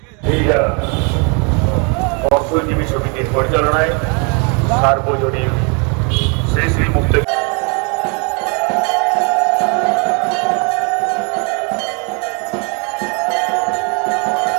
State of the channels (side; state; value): left; quieter; 34.4 dB